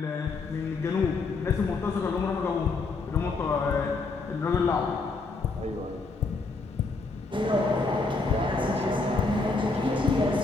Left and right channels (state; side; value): quieter; right; 3.8 dB